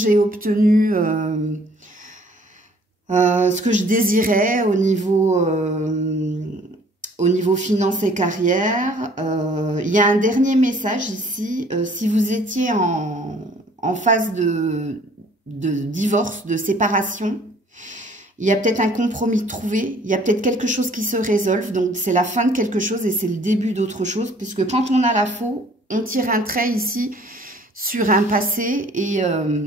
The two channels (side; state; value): both; normal; correlation 0.56